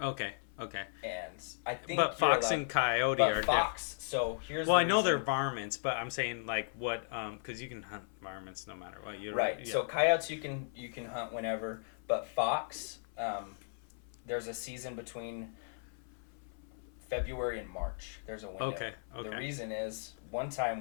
Okay. And I think. But fox and coyote are fox. So here's. Well, I know they're varmints, but I'm saying like what? Because you can hunt varmints no matter what. Right. Yeah. So coyotes you can hunt whenever, but fox, there's a season between February and March. There's a window. Okay. The reason is one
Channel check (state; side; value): silent; right; 54 dB below the other